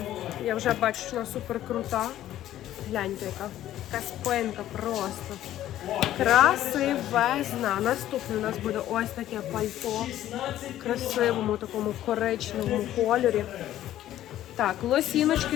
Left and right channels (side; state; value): right; quieter; 12.9 dB